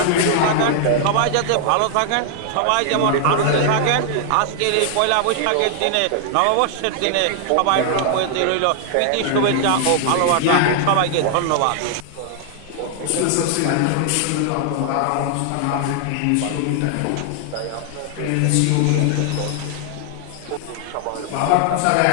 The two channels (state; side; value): different; both; correlation 0.00